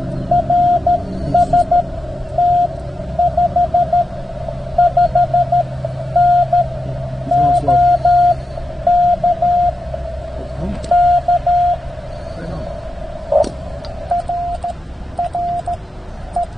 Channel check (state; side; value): normal; both; correlation 0.89